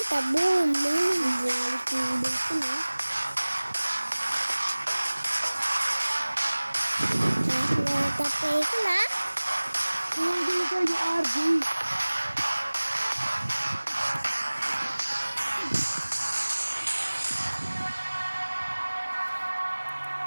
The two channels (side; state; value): both; inverted; correlation -1.00